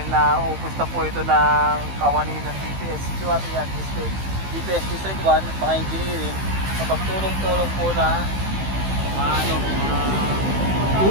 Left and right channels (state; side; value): late; left; 15 ms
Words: naupos na po ito ng kawani ng DPS QRT at DPS District 1 mga engineering kapag tulong-tulong po na